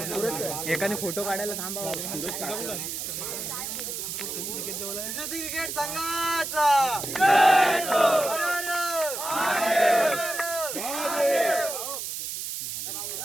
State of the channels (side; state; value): right; noise; hiss, 5 dB below the sound